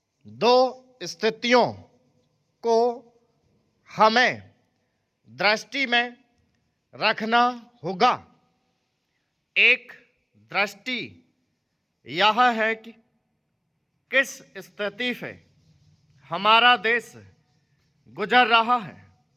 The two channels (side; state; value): both; identical; correlation 1.00